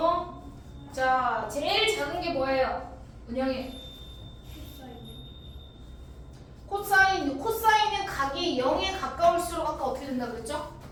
자, 제일 작은 게 뭐예요? 은영이. 코사인은 각이 0에 가까울수록 아까 어떻게 된다 그랬죠?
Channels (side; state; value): both; identical; correlation 1.00